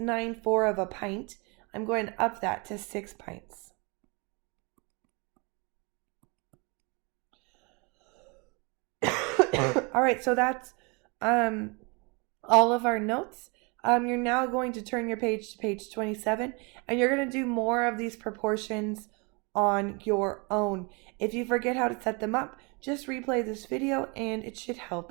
of a pint, I'm going to up that to 6 pints. All right, so that's all of our notes. You're now going to turn your page to page 27, and you're going to do more of these proportions on your own. If you forget how to set them up, just replay this video and it should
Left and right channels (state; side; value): quieter; left; 30.7 dB